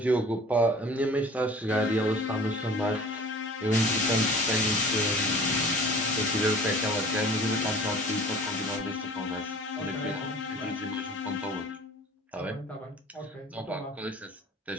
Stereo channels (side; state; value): both; normal; correlation 0.45